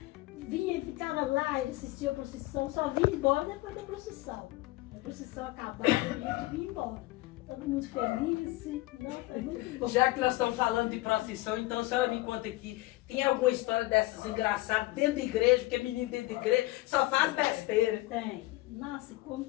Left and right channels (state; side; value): quieter; right; 19.3 dB